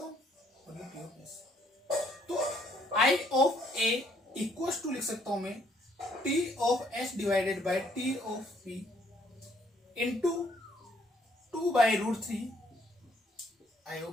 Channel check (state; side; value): normal; both; correlation 0.67